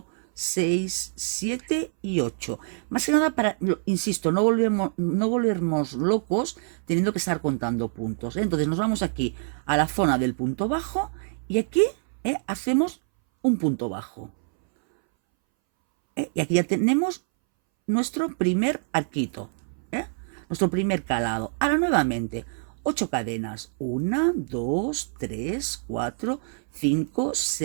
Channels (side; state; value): left; silent; 61 dB below the other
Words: 6, 7 y 8. Más que nada para, insisto, no volvernos locos teniendo que estar contando puntos. Entonces nos vamos aquí a la zona del punto bajo y aquí hacemos un punto bajo. Y aquí ya tenemos nuestro primer arquito, nuestro primer calado. Ahora nuevamente, 8 cadenas. 1, 2, 3, 4, 5,